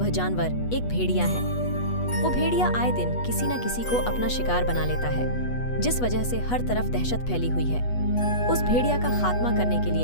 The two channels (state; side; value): late; right; 8.2 ms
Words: जानवर एक भेड़िया है। वो भेड़िया आए दिन किसी न किसी को अपना शिकार बना लेता है, जिस वजह से हर तरफ दहशत फैली हुई है। उस भेड़िया का खात्मा करने के